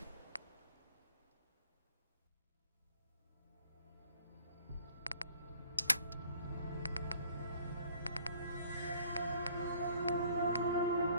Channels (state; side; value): inverted; both; correlation -0.57